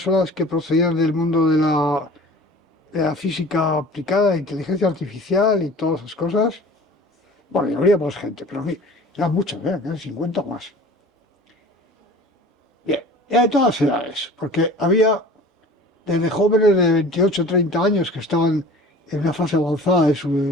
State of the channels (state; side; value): normal; both; correlation 0.43